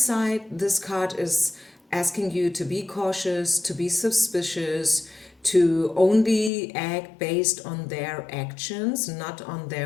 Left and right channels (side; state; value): right; drops out; at 6.5 s